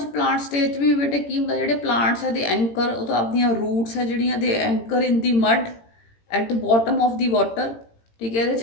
plant stage ਵੀ ਬੇਟੇ ਕੀ ਹੁੰਦਾ, ਜਿਹੜੇ ਪਲਾਂਟਸ ਹੈ ਦੇ ਐਂਕਰ, ਉਹ ਤਾਂ ਆਪਣੀਆਂ ਰੂਟਸ ਹੈ ਜਿਹੜੀਆਂ ਦੇ anchor in the mud at the bottom of the water. ਠੀਕ ਹੈ, ਇਹਦੇ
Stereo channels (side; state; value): right; late; 18 ms